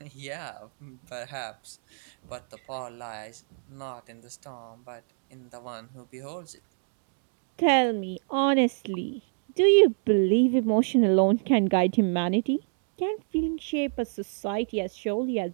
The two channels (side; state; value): left; silent; digital silence